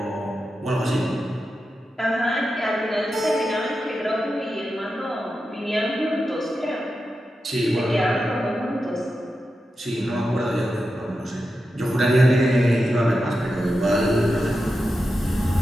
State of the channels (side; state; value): both; normal; correlation 0.90